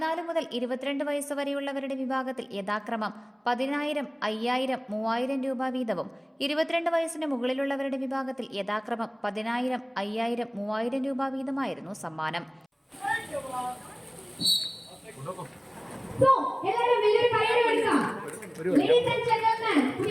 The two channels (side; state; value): both; identical; correlation 1.00